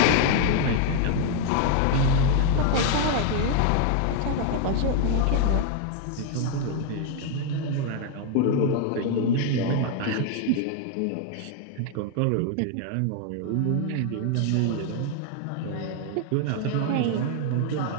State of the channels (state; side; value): different; both; correlation 0.00